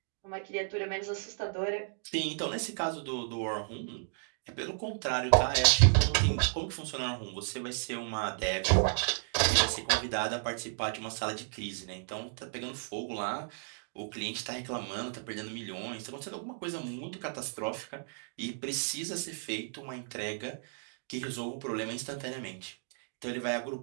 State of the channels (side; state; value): left; silent; digital silence